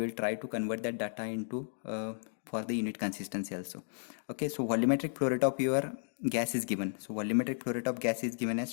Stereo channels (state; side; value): silent; right; digital silence